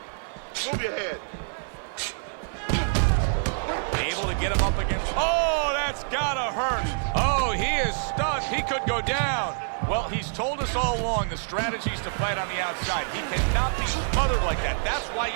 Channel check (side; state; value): left; silent; digital silence